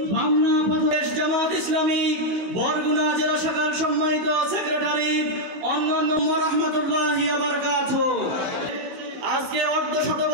বামনা প্রদেশ জামাত ইসলামী বরগুনা জেলা শাখার সম্মানিত সেক্রেটারি অন্যান্য রাহমাতুল্লাহি ওয়া বারাকাতুহু। আজকে অর্ধশত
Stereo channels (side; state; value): left; late; 16 ms